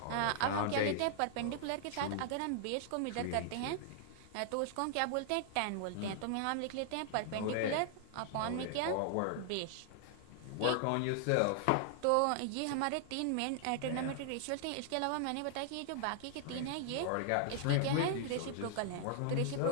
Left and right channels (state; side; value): different; both; correlation -0.01